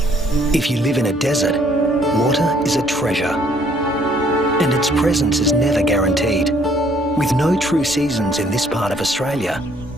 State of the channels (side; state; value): both; normal; correlation 0.63